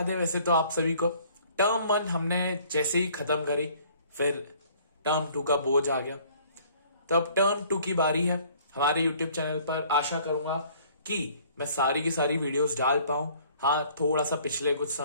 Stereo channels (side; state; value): both; inverted; correlation -0.56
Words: वैसे तो आप सभी को टर्म 1 हमने जैसे ही खत्म करी, फिर टर्म 2 का बोझ आ गया। तो अब टर्म 2 की बारी है। हमारे यूट्यूब चैनल पर आशा करूंगा कि मैं सारी की सारी वीडियोस डाल पाऊं। हाँ, थोड़ा सा पिछले कुछ